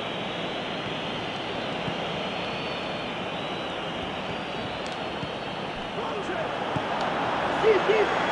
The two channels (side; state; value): both; identical; correlation 1.00